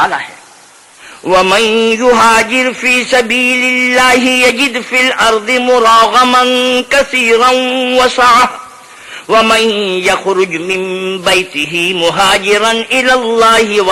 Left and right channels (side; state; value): both; identical; correlation 1.00